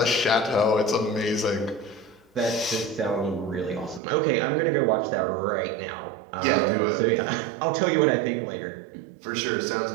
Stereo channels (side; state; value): left; drops out; at 4.0 s